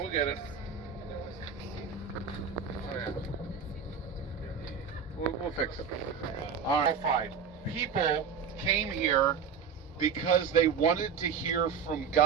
yeah. We'll fix it. All right. People came here because they wanted to hear from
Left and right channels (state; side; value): quieter; left; 6.5 dB